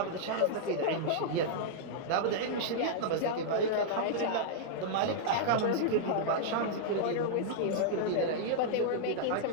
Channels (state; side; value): different; both; correlation -0.01